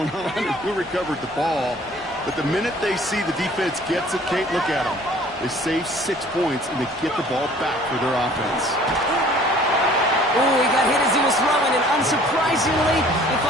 on and who recovered the ball. But the minute they see the defense gets it, Kate, look at them. They save 6 points, and they get the ball back for their offense. Oh, he got hit as he was throwing, and unsurprisingly, it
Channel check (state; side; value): normal; both; correlation 0.52